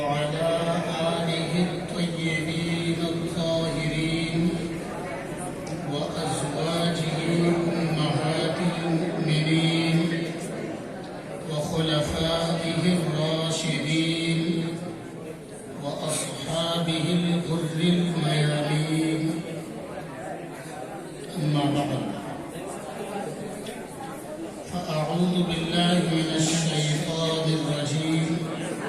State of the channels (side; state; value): both; identical; correlation 1.00